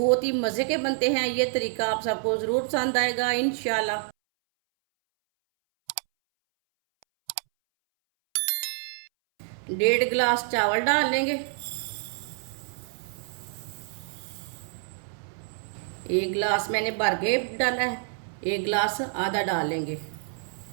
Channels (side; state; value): left; silent; 60 dB below the other